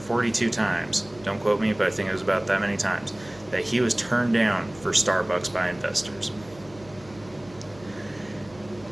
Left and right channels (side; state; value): left; noise; hum, 22 dB below the sound